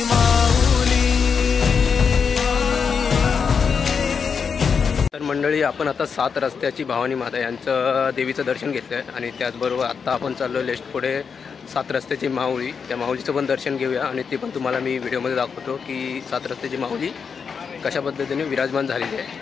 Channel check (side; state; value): right; quieter; 6.1 dB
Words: माऊली. तर मंडळी आपण आता 7 रस्त्याची भवानी माता यांचं देवीचं दर्शन घेतलं आहे आणि त्याचबरोबर आत्ता आपण चाललो लेस्ट पुढे 7 रस्त्याची माऊली. त्या माऊलीचं पण दर्शन घेऊया आणि ते पण तुम्हाला मी व्हिडिओमध्ये दाखवतो की 7 रस्त्याची माऊली कशा पद्धतीने विराजमान झालेली